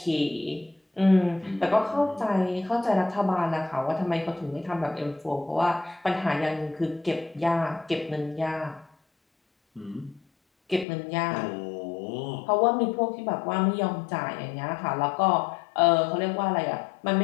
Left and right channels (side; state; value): right; drops out; at 10.9 s